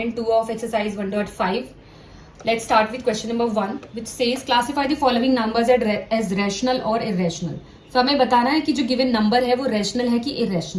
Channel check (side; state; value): both; identical; correlation 1.00